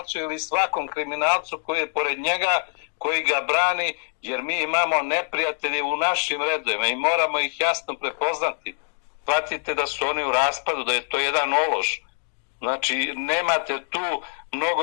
ili svakom kriminalcu koji je pored njega, koji ga brani, jer mi imamo neprijatelje u našim redovima i moramo ih jasno prepoznati. Shvatite da su oni u raspadu, da je to jedan ološ. Znači, nemate tu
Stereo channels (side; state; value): right; silent; 62 dB below the other